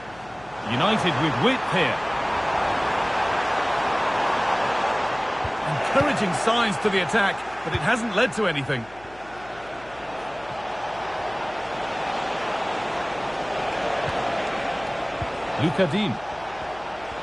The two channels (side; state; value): left; noise; hum, 23 dB below the sound